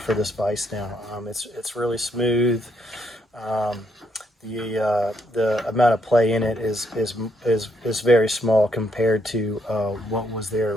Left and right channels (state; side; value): normal; both; correlation 0.75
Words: this vise now. It's really smooth. The amount of play in it is very small compared to what was there